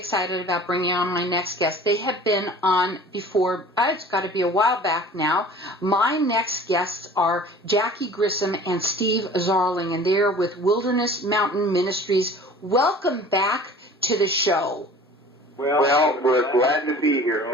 excited about bringing on my next guest. They have been on before. It's got to be a while back now. My next guests are Jackie Grissom and Steve Zarling, and they're with Wilderness Mountain Ministries. Welcome back to the show. Well, we're glad to be here,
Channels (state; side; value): normal; both; correlation 0.45